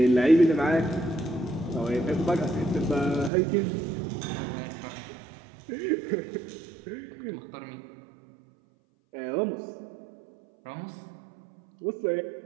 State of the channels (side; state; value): left; drops out; at 3.3 s